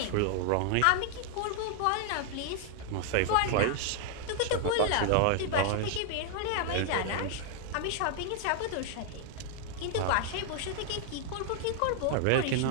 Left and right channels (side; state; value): both; different; correlation 0.00